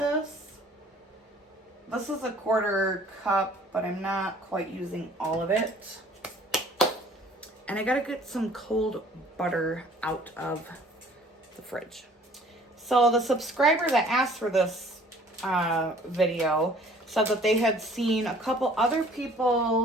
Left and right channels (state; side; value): normal; both; correlation 0.54